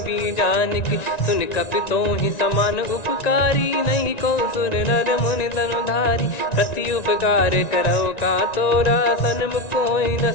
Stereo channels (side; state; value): right; late; 1.9 ms